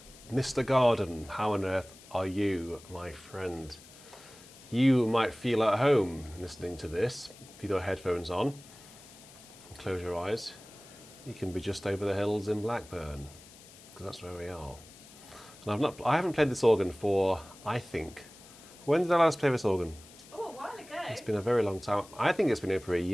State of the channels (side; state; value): left; noise; hiss, 21 dB below the sound